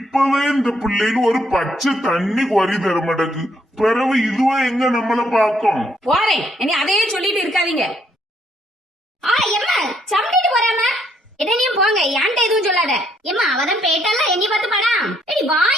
இந்த பிள்ளைகள் ஒரு பச்சை தண்ணி குறை தர மாட்டேக்கு. பிறகு இதுவா எங்க நம்மள பாக்கும். போறேன், இனி அதையே சொல்லிட்டு இருக்காதீங்க. எம்மா சம்டிட்டு போறாம என்னையும் போங்க, ஏன்ட்ட எதுவும் சொல்லாத. எம்மா அவதான் பேட்டால என்னை பார்த்து படா. ஏடி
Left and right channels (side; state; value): both; normal; correlation 0.71